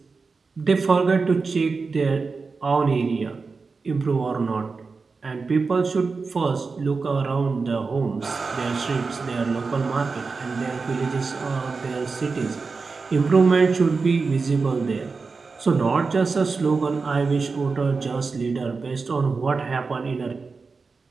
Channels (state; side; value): quieter; left; 4.5 dB